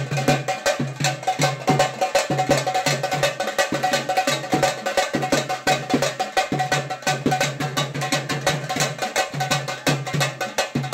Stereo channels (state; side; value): identical; both; correlation 1.00